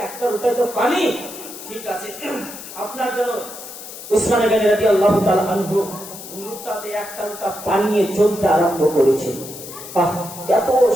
একটা লোটায় তো পানি, ঠিক আছে আপনার জন্য। উসমানে গানি রাদিয়াল্লাহু তাআলা আনহু লোটাতে একটা লোটা পানি নিয়ে চলতে আরম্ভ করেছেন। এত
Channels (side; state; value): left; noise; hiss, 13 dB below the sound